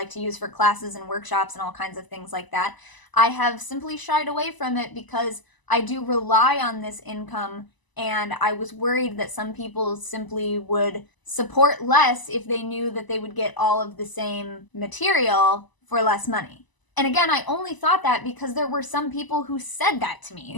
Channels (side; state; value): right; late; 1.0 ms